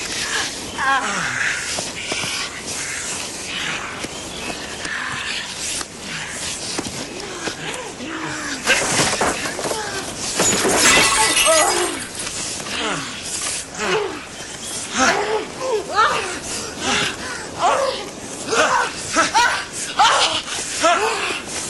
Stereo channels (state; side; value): identical; both; correlation 1.00